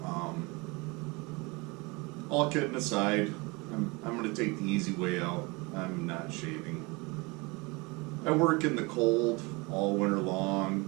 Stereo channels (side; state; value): left; quieter; 26.6 dB